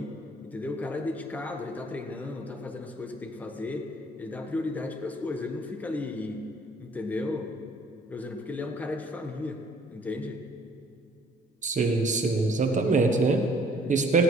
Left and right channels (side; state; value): both; normal; correlation 0.59